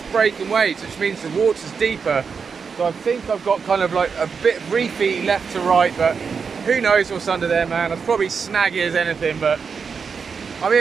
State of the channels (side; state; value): left; quieter; 5.7 dB